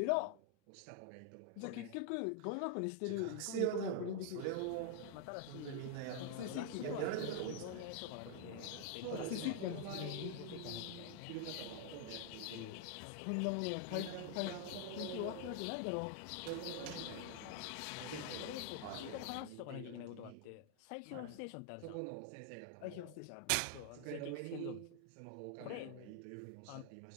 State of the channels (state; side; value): different; both; correlation 0.00